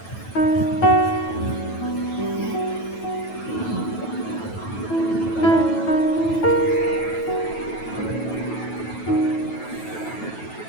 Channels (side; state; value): right; late; 9.2 ms